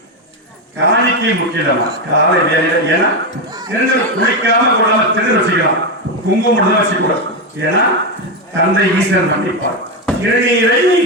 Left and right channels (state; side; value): normal; both; correlation 0.09